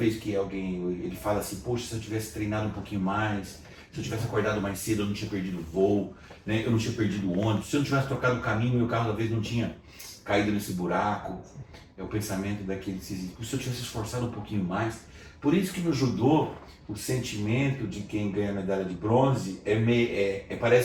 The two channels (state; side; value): identical; both; correlation 1.00